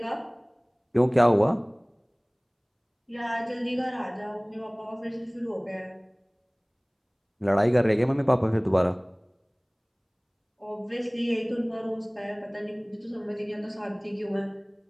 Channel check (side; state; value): both; identical; correlation 1.00